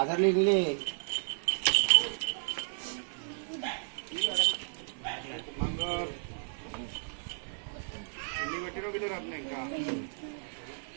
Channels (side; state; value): left; silent; 56 dB below the other